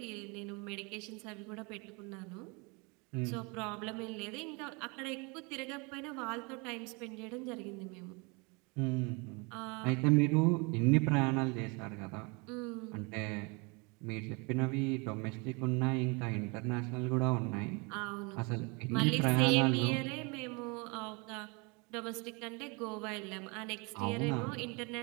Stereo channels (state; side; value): quieter; left; 29.7 dB